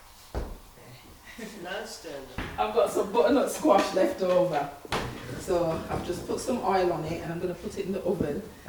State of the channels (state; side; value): identical; both; correlation 1.00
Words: go. Nice then. I've got some butternut squash left over. So I've just put some oil on it and I'm going to put it in the oven